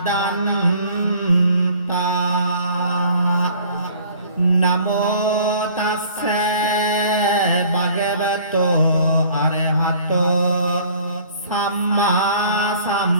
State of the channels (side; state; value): both; inverted; correlation -0.52